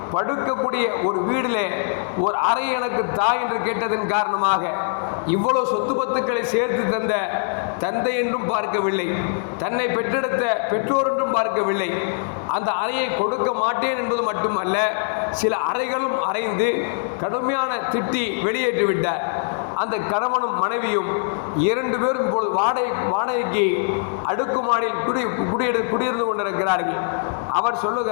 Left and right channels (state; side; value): silent; right; digital silence